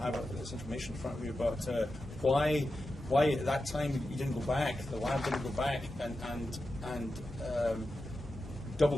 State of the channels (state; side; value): normal; both; correlation 0.91